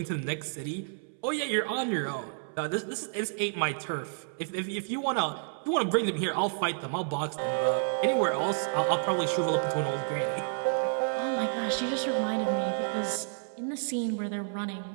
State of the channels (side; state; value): left; silent; 58 dB below the other